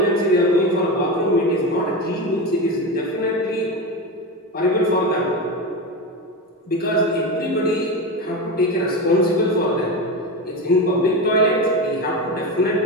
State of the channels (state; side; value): normal; both; correlation 0.20